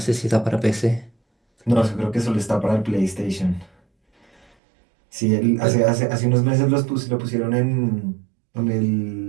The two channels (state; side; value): drops out; left; at 4.5 s